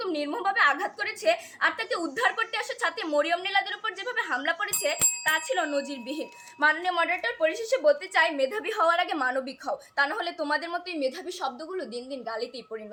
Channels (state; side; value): identical; both; correlation 1.00